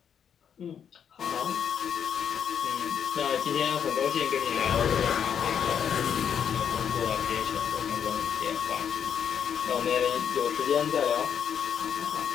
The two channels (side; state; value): right; quieter; 8.1 dB